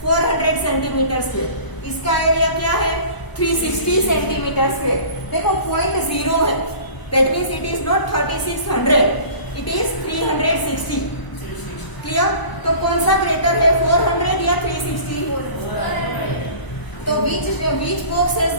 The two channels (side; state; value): right; late; 1.0 ms